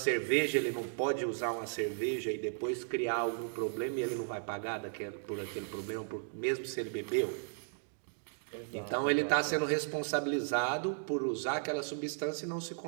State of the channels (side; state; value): left; silent; digital silence